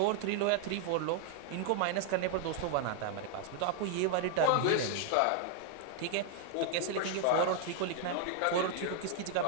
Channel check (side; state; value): both; different; correlation 0.00